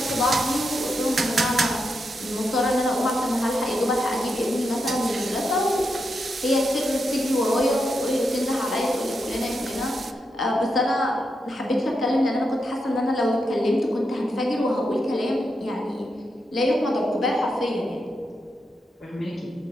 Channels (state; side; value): normal; both; correlation 0.85